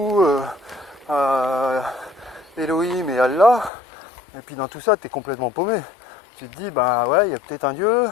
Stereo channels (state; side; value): drops out; right; at 3.7 s